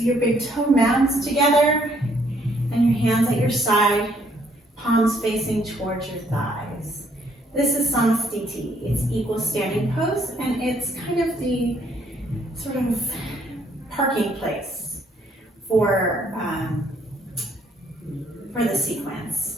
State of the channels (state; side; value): normal; both; correlation 0.67